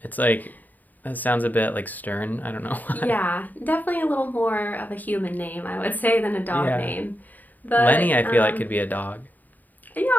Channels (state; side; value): late; right; 0.084 ms